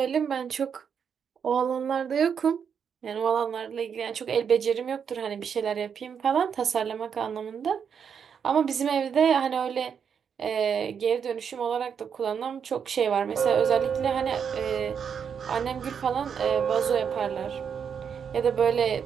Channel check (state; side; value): quieter; left; 7.2 dB